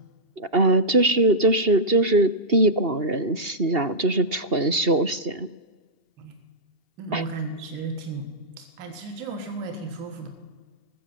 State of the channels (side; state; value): left; late; 2.8 ms